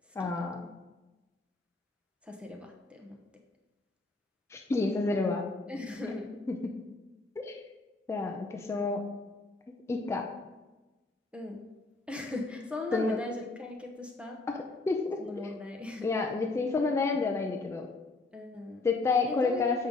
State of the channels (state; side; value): quieter; right; 3.3 dB